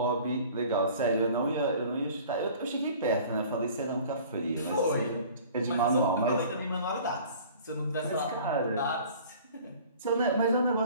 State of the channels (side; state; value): both; inverted; correlation -0.47